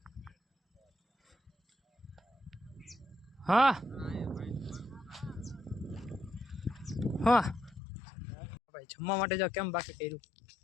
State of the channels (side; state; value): right; drops out; at 7.8 s